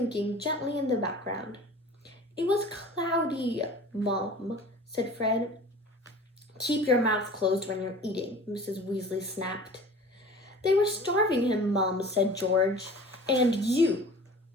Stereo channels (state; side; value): normal; both; correlation 0.42